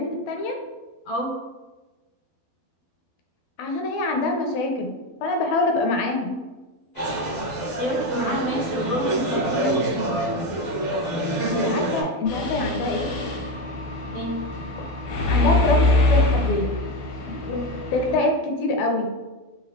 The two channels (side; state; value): right; late; 12 ms